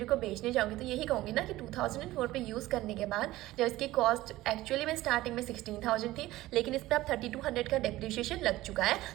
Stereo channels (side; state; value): left; quieter; 16.9 dB